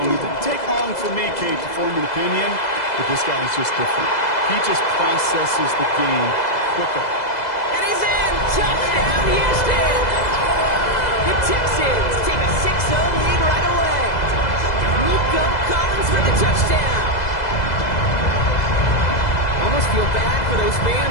And it didn't take long for me, Kate, to form an opinion, but this guy's just different. He just processes the game quicker. And he's in! Touchdown, Houston! The Texans take a 6-0 lead right away. Nico Collins for the touchdown. Almost feel bad for those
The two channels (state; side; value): late; right; 2.0 ms